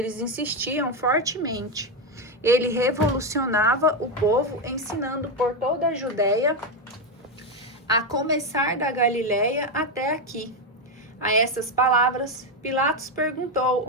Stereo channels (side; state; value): both; normal; correlation 0.08